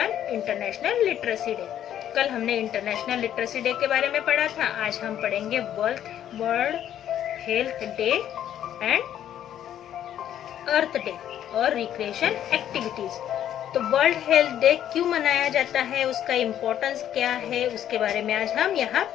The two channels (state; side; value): quieter; right; 10.8 dB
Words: international literacy day. कल हमने इंटरनेशनल लिटरेसी डे के बारे में पढ़ा था. आज हम पढ़ेंगे world health day and earth day और रिक्रिएशन एक्टिविटीज. तो वर्ल्ड हेल्थ डे क्यों मनाया जाता है, उसका इम्पोर्टेंस क्या है, उसके बारे में आज हम यहाँ